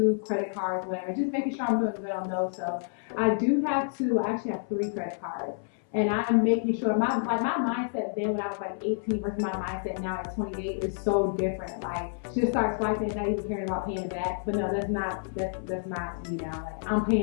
credit cards, whatever, just making sure I'm doing good on those. So I do have 2, I actually have 3 credit cards, and I'm making sure my mindset then when I was like 18 versus my mindset now at 28 is so different. Like, just start swiping and not even caring about paying it back. But no, that's not me now. Like, I'm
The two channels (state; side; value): silent; right; 59 dB below the other